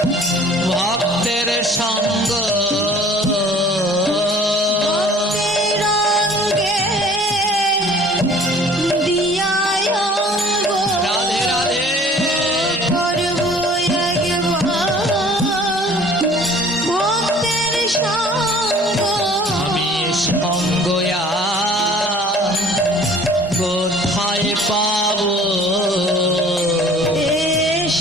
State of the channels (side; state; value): both; normal; correlation 0.50